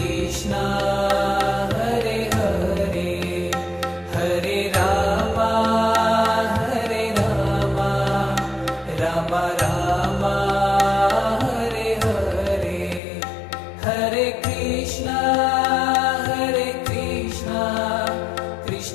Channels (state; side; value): drops out; right; at 13.0 s